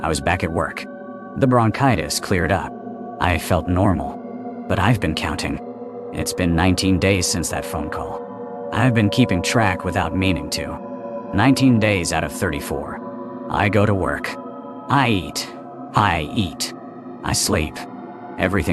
I was back at work. The bronchitis cleared up. I felt normal. But I've been counting. It's been 19 days since that phone call. I've been keeping track without meaning to. 19 days out of 34. I go to work. I eat. I sleep.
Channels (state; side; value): identical; both; correlation 1.00